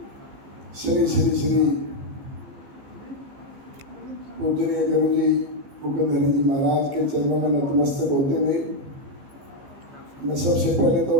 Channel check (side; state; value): left; late; 15 ms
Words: श्री श्री श्री पूजनीय गुरु जी मुकुंद हरि जी महाराज के चरणों में नतमस्तक होते हुए मैं सबसे पहले